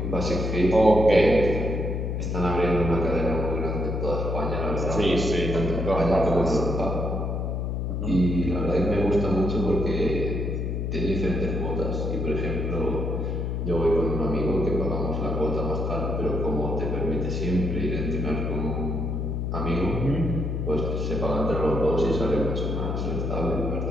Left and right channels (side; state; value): left; noise; hum, 1 dB below the sound